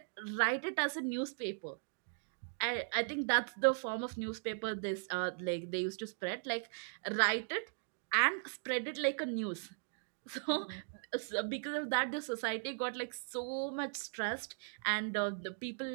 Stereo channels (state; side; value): silent; left; digital silence